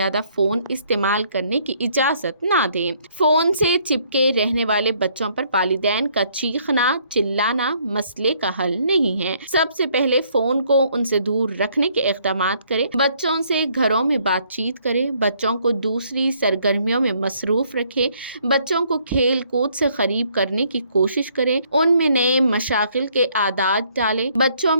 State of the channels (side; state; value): both; inverted; correlation -0.66